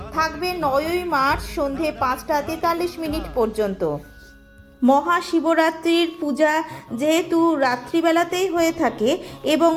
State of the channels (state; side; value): identical; both; correlation 1.00